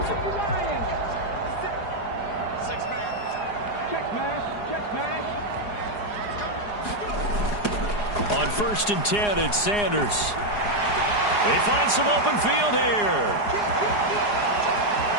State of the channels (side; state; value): right; late; 4.8 ms